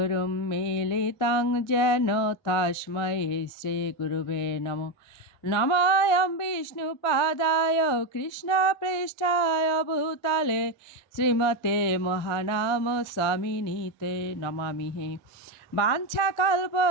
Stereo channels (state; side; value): late; right; 1.5 ms